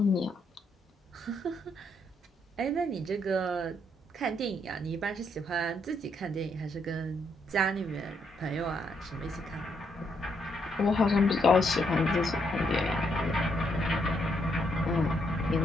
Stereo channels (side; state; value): both; normal; correlation 0.75